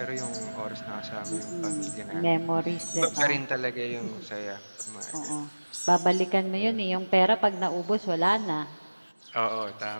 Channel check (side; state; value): both; inverted; correlation -1.00